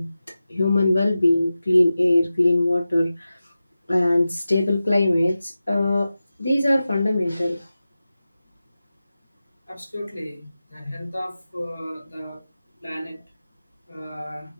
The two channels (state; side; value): inverted; both; correlation -0.94